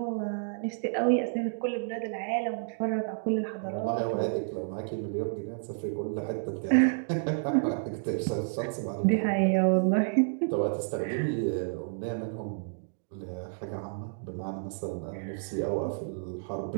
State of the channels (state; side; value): silent; left; digital silence